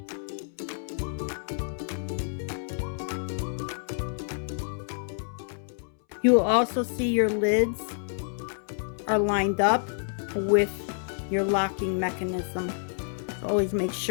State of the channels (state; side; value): silent; right; 59 dB below the other